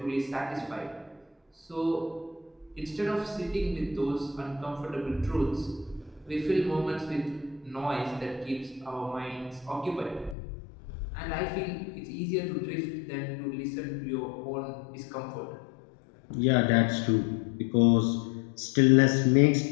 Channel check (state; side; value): drops out; right; at 10.4 s